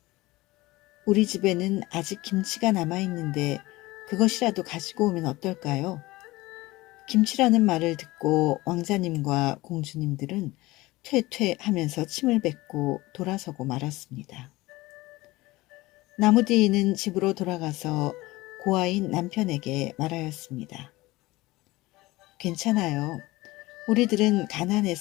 우리 집에는 아직 김치가 남아있는데 그것이라도 가지고 오면 어떨까요? 김치라는 말을 듣고 왕자님과 공주님들은 퇴퇴 하면서 침을 뱉고 돌아서고 말았습니다. 나무디는 집으로 돌아가서 고아인 남편에게 말하였습니다. 괜찮아요. 우리들은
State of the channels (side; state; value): right; quieter; 19.9 dB